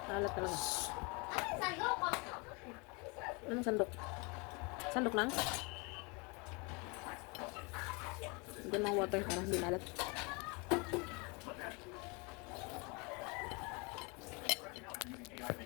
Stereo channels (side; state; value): right; quieter; 30.2 dB